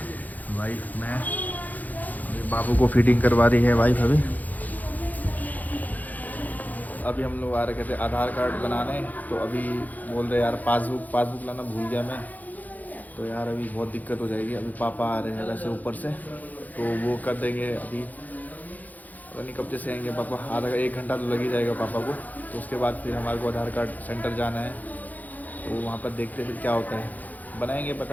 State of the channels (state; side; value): late; right; 0.081 ms